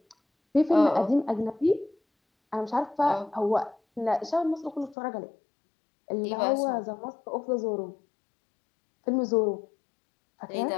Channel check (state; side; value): drops out; right; at 5.0 s